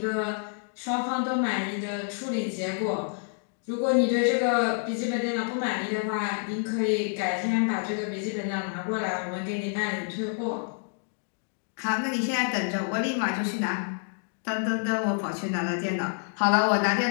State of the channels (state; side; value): silent; right; 59 dB below the other